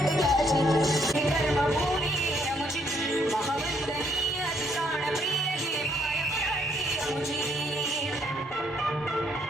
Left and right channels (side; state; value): both; normal; correlation 0.70